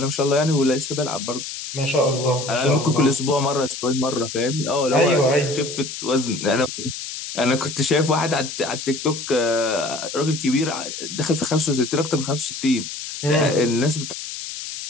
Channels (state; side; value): noise; left; hiss, 8 dB below the sound